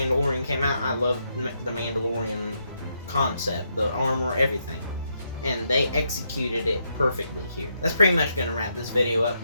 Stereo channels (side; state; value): both; inverted; correlation -0.79